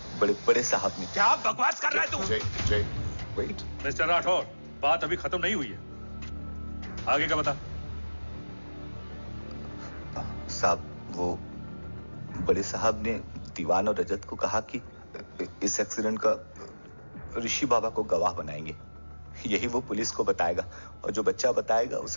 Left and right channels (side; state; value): both; inverted; correlation -1.00